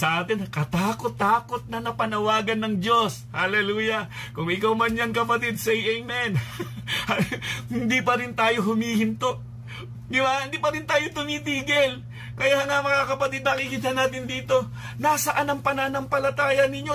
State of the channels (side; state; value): both; identical; correlation 1.00